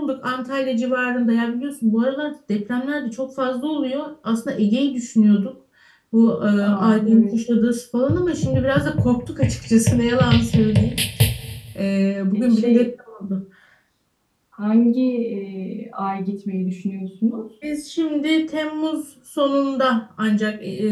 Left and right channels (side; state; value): both; identical; correlation 1.00